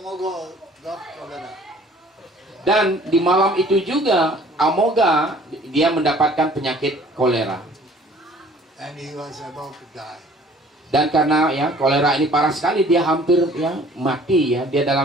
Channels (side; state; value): both; normal; correlation 0.53